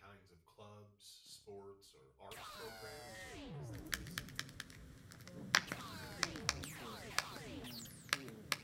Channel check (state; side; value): identical; both; correlation 1.00